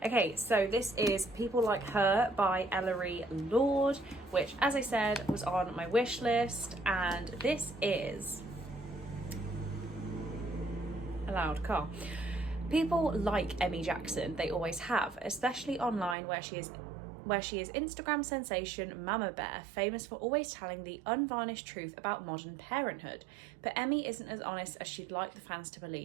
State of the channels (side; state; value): left; drops out; at 16.2 s